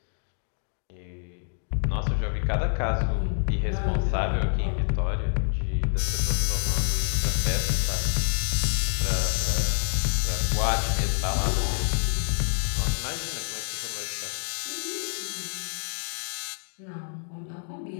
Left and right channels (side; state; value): right; silent; 60 dB below the other